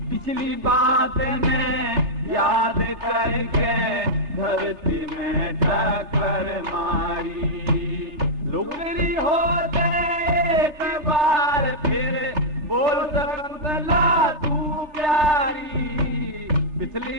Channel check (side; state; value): left; late; 3.3 ms